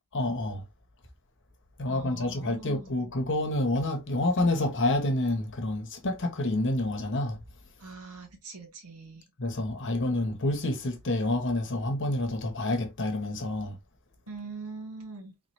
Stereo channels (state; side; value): normal; both; correlation 0.43